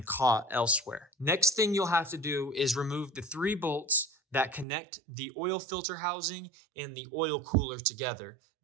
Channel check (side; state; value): left; drops out; at 4.7 s